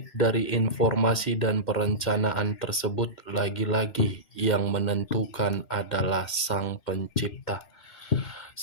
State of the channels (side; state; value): right; late; 2.1 ms